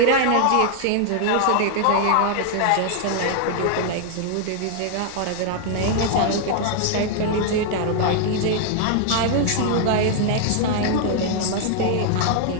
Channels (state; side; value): different; both; correlation 0.00